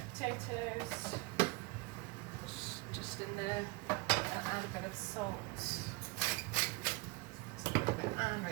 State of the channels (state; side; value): quieter; left; 24.7 dB